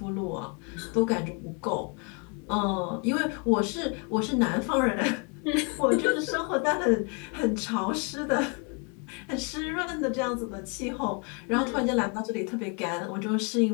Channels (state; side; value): quieter; right; 35.4 dB